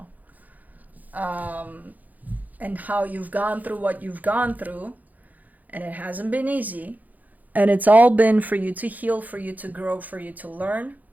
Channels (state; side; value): late; left; 0.081 ms